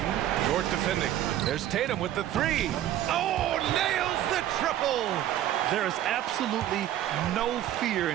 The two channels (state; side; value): quieter; left; 12.4 dB